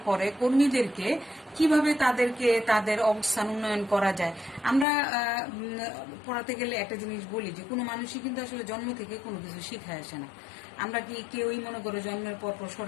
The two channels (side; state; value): right; drops out; at 4.9 s